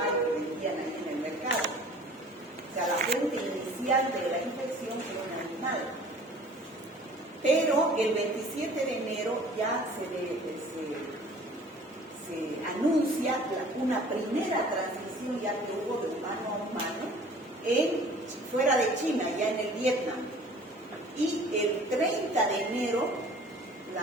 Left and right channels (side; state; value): both; normal; correlation 0.48